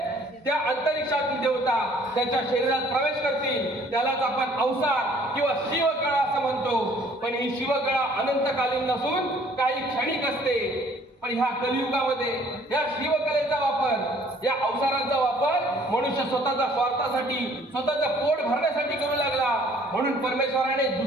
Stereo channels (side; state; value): both; normal; correlation 0.58